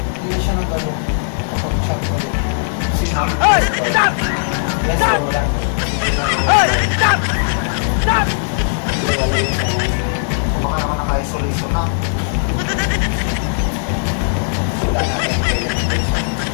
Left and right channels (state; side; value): silent; right; digital silence